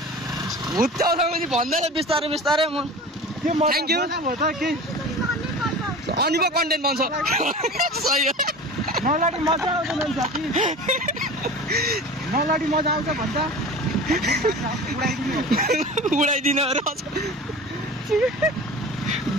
भुत्याउँछ मुजी भन्दैन बिस्तारै बिस्तारै म थ्याङ्क यू अनि पो कन्टेन्ट बन्छ सही हो नलाडी मजा आउँदैन साथी नलाडी मजा आउँछ भन्छ उडाइदिनु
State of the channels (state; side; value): normal; both; correlation 0.36